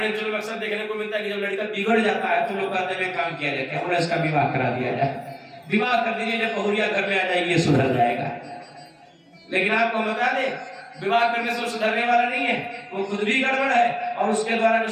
अंचल में अक्सर देखने को मिलता है कि जब लड़का बिगड़ जाता है तो लोग कहते हैं काम किया जाए, और इसका विवाह करा दिया जाए, विवाह कर दीजिए, जब बहुरिया घर में आ जाएगी ये सुधर जाएगा। लेकिन आपको बता दें विवाह करने से सुधरने वाला नहीं है, वो खुद भी गड़बड़ है और उसके द्वारा जो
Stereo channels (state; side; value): identical; both; correlation 1.00